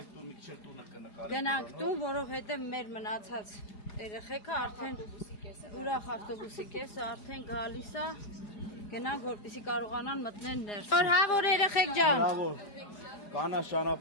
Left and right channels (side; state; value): right; late; 4.9 ms